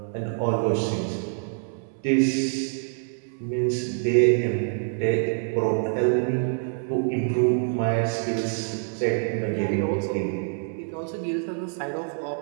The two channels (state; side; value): silent; left; 61 dB below the other